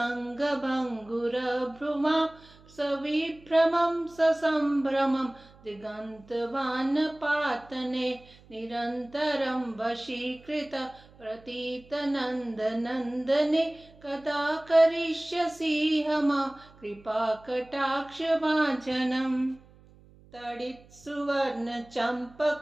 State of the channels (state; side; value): noise; right; hum, 25 dB below the sound